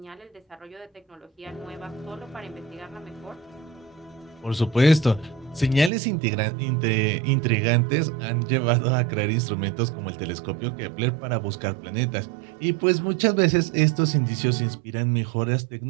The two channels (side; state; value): left; drops out; at 5.9 s